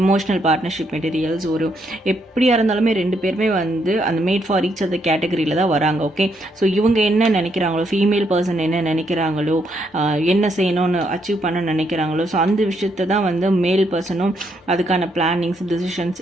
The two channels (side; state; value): both; normal; correlation 0.75